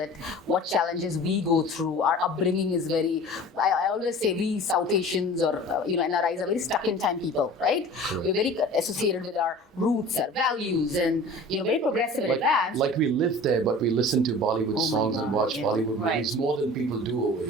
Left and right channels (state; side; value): normal; both; correlation 0.41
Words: what challenges we go through. Our upbringing is very, I always say we South Asians or, NRIs are very stuck in time people, right? Correct. We're very associated with our roots, our values, and, very progressive and advanced. Like we live there, but we listen to Bollywood Oh my songs and God, watch yeah. Bollywood Right. movies more than people do over